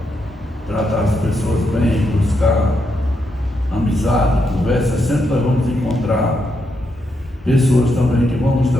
tratar as pessoas bem, buscar amizade, conversa, sempre nós vamos encontrar pessoas também que vão nos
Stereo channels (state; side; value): normal; both; correlation 0.81